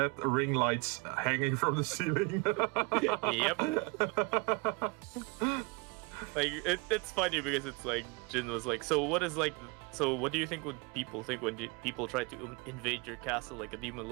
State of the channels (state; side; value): quieter; left; 27.5 dB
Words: ring lights hanging from the ceiling. Yep. Like it's funny because it's like Jinn was like, so what do you think would people think when people try to invade your castle, like a demon